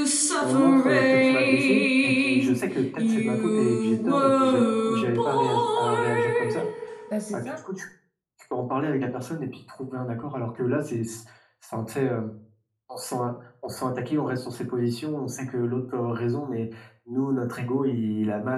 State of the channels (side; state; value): both; identical; correlation 1.00